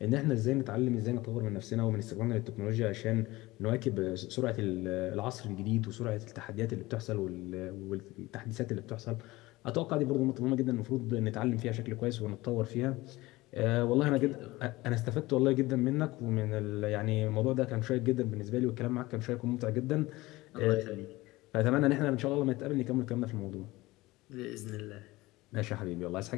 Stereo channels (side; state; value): right; quieter; 19.8 dB